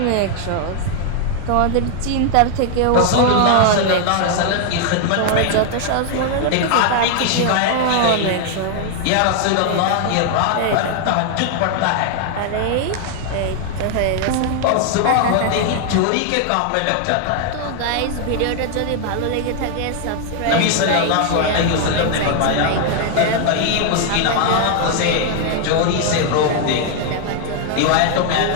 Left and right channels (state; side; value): different; both; correlation 0.00